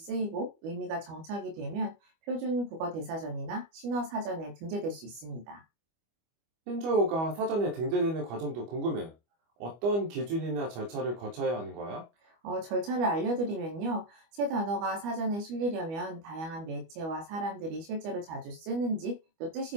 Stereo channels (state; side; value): late; left; 25 ms